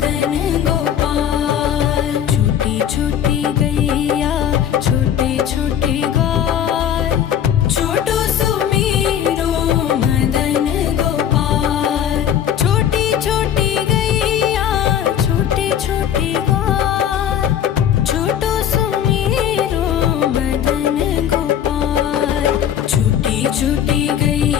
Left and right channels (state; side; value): quieter; right; 9.6 dB